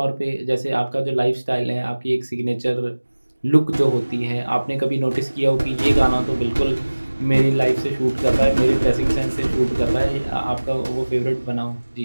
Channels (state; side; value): inverted; both; correlation -1.00